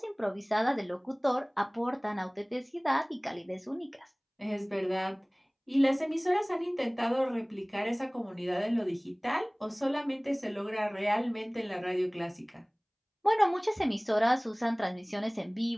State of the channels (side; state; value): both; identical; correlation 1.00